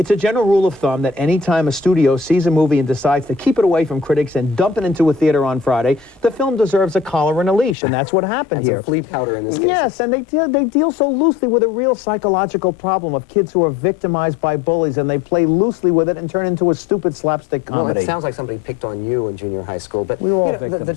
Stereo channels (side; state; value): right; drops out; at 7.8 s